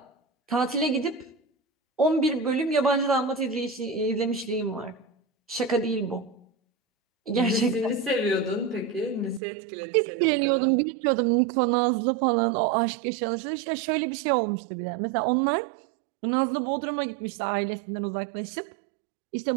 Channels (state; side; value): drops out; left; at 9.4 s